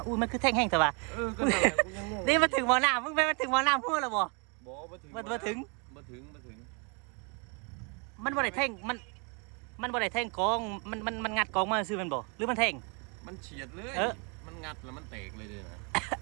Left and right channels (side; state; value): left; quieter; 34.3 dB